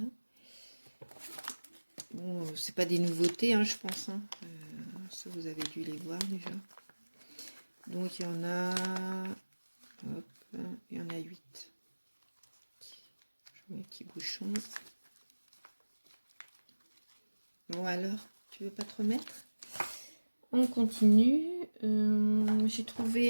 Bon, c'est pas des nouveautés, hein, je pense. Hein. Ça, vous avez dû les voir déjà. Donc, il y en a... Hop, il y en a 8. Je mets un petit bouchon. Bon, alors, tu veux pas te remettre? On continue. J'ai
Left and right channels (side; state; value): both; inverted; correlation -1.00